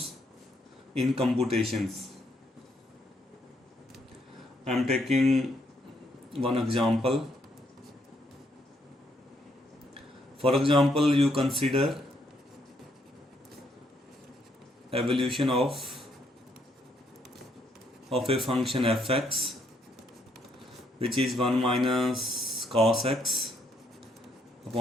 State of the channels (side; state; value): both; normal; correlation 0.73